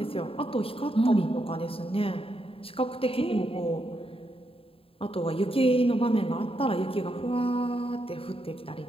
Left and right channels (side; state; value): right; late; 0.27 ms